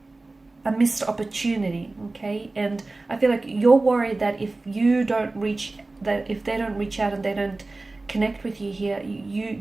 missed opportunity. Okay, and I feel like you're worried that if they don't reach out and they don't connect with you here,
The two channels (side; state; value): left; quieter; 3.2 dB